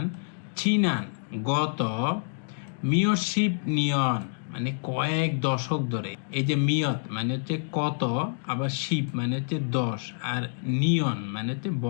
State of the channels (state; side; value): silent; right; digital silence